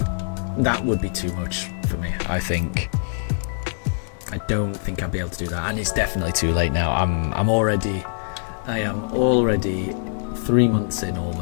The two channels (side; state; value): right; silent; digital silence